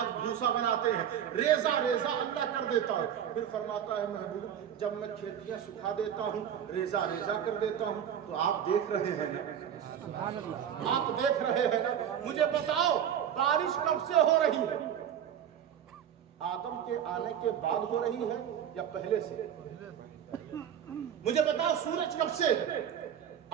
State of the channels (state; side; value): quieter; left; 9.3 dB